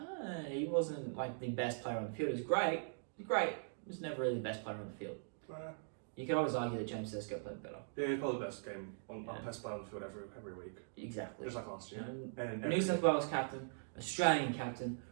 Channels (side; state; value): left; silent; digital silence